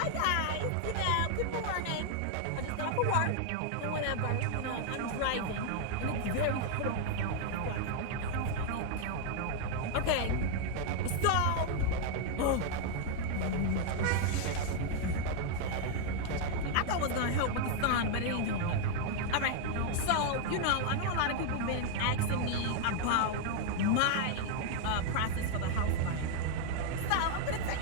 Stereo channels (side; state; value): both; different; correlation 0.00